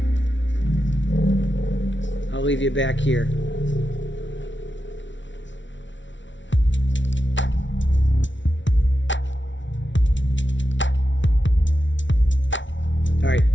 I'll leave you back here. All right,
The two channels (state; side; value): late; right; 0.55 ms